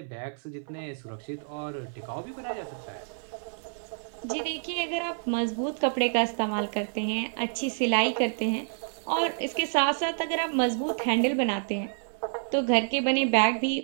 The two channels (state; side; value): silent; left; 59 dB below the other